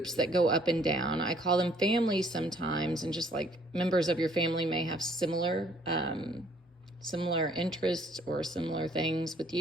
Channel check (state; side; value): normal; both; correlation 0.62